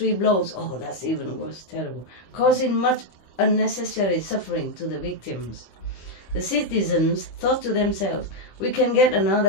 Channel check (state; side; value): late; right; 25 ms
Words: blows. Oh, that's even worse, terrible, causing much unnecessary suffering to the victims. The citizens thought to themselves, we can get another